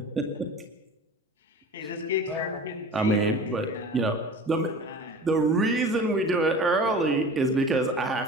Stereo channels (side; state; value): both; normal; correlation 0.38